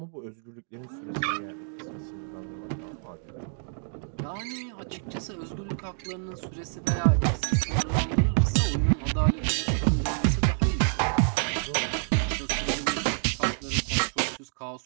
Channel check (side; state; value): left; silent; 59 dB below the other